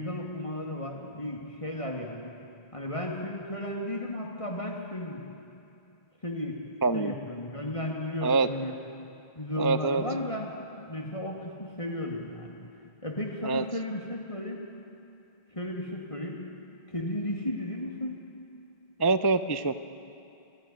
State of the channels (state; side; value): late; right; 1.1 ms